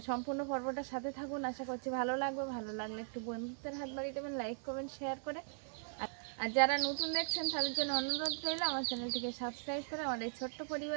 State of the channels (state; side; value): silent; left; 52 dB below the other